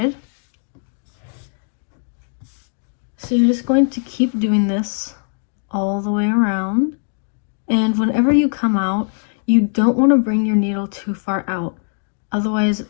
So you're just going to keep doing this all the way around. And whenever you come out, you don't want to bring your needle too far out. Otherwise,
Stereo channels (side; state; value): right; silent; 66 dB below the other